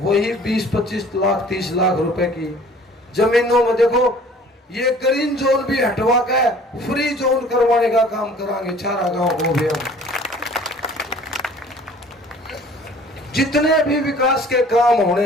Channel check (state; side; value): normal; both; correlation 0.51